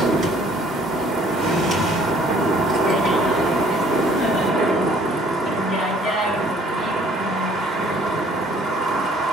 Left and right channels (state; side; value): normal; both; correlation 0.58